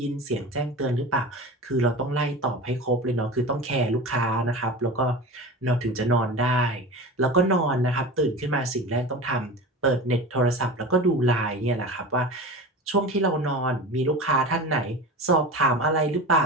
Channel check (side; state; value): both; normal; correlation 0.31